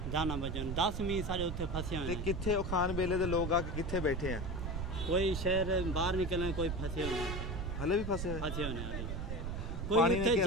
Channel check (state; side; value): noise; right; rumble, 4 dB below the sound